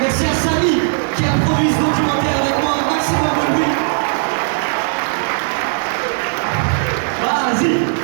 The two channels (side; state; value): left; silent; 68 dB below the other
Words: Merci à Samy qui a produit ce documentaire avec moi, un maximum de bruit. Vas-y.